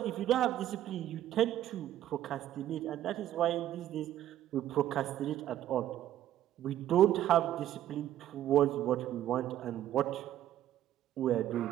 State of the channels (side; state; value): left; quieter; 12.3 dB